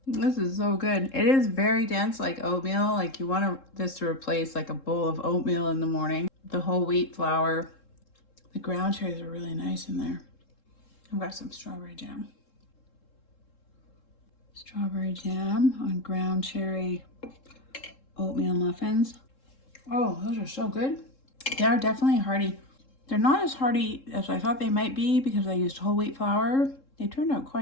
This is so good. It is very dense, like oatmeal. Like you want this to replace like a bowl of oatmeal in the morning. The whole wheat flour. The ground cherries are really nice in there. I've got some strawberry jam. Strawberry jam on ground cherry oatmeal muffins. Oh, those are so good. They are definitely hearty. They're not as hearty as I thought they might be because I used whole wheat flour. They turned out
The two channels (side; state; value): right; late; 3.7 ms